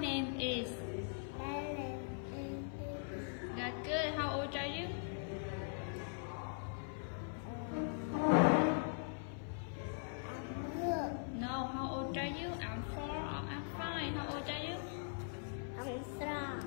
is. My name is Lily. That's good. How old are you? I'm good. No, how old are you? I'm 4 or I'm 5. How old are you? I'm strong.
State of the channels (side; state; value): right; silent; 50 dB below the other